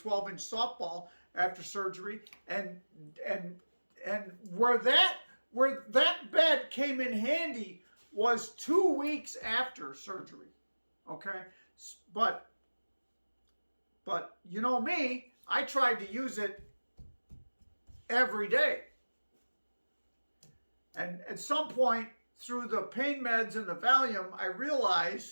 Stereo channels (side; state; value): both; inverted; correlation -1.00